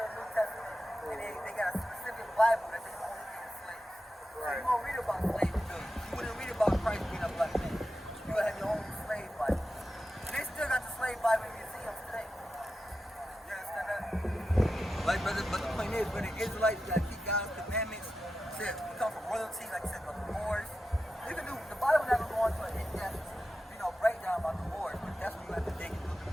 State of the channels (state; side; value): normal; both; correlation 0.91